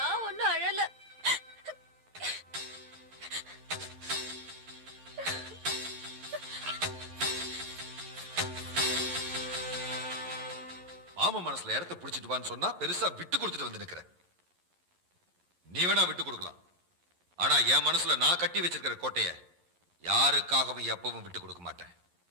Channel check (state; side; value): late; left; 11 ms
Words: ஒன்னும் அழல. மாமா மனசுல இடத்த புடிச்சிட்டு வான்னு சொன்னா பெருசா விட்டு கொடுத்துட்டு வந்து நிக்கிற. நீ வேணா விட்டு கொடுக்கலாம், ஆனா என் மனசுல நான் கட்டி வச்சிருக்கிற கோட்டைய யாருக்காகவும் எப்பவும் விட்டு கொடுக்க மாட்டேன்.